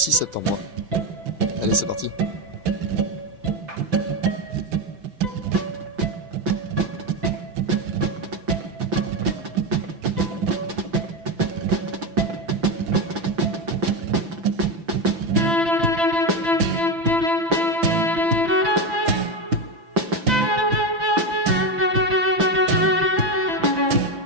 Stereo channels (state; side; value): late; left; 5.9 ms